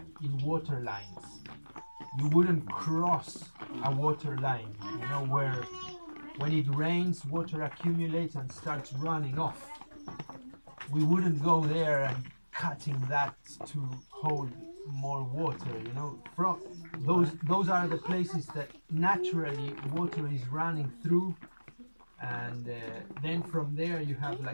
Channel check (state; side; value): inverted; both; correlation -1.00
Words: in water lines. You wouldn't cross a water line, you know, where when it rains, water accumulates and starts running off. We wouldn't go there and cutting that to hold more water, you know. From those are the places that naturally water is running through, and then from there you have